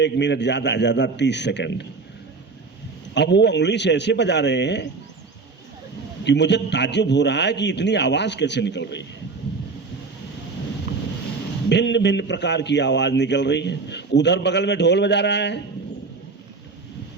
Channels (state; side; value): quieter; left; 4.2 dB